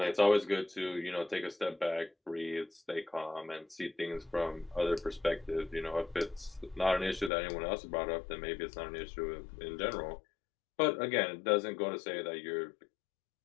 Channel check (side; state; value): right; drops out; at 7.3 s